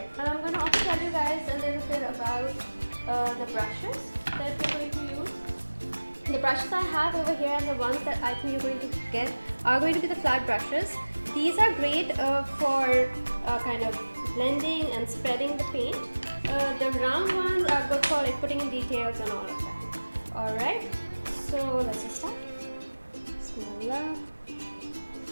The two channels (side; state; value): both; inverted; correlation -1.00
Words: I'm going to also tell you guys a little bit about the brushes that we're going to use. The brushes I have over here and the ones that I think you're going to get are going to be the flat brushes. These are great for kind of blending and spreading the paint. The round ones are good for like putting in details and all of that. Alright, so let's just start. Bismillah.